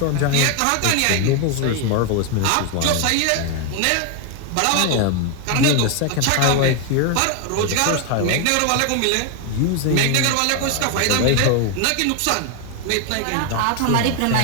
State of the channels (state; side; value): different; both; correlation 0.01